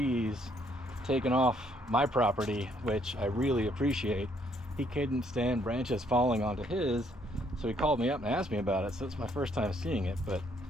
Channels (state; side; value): normal; both; correlation 0.68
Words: taken off my property, which I really appreciate. He couldn't stand branches falling onto his, so he called me up and asked me about it. So it's my first time seeing it, but